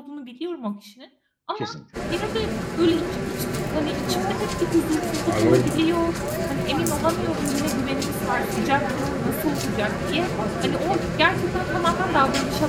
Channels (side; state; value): both; identical; correlation 1.00